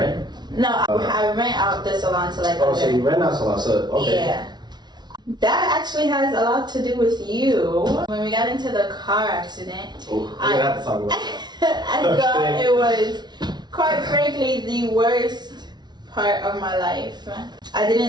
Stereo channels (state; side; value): late; left; 0.20 ms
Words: No, I rent out the salon to Oh, so you rent out salon? So okay. Yeah. That actually has a lot to do with you. When we got into the car accident, We're gonna have to talk about it. I thought it was, quite frankly, the worst part of my life. I